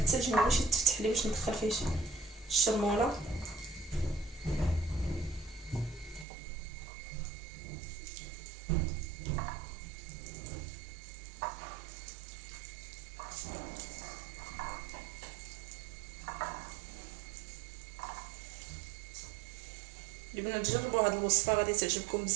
ما بغيتش يتفتح لي باش ندخل فيه الشرموله. البنات جربوا هاد الوصفه غادي تعجبكم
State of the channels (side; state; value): left; drops out; at 6.2 s